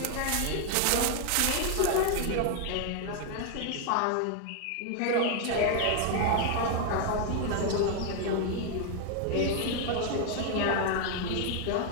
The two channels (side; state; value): both; different; correlation 0.00